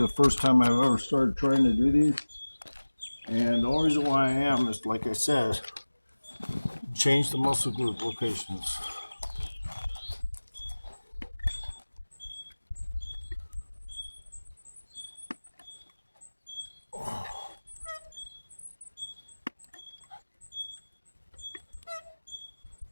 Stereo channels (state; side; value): inverted; both; correlation -1.00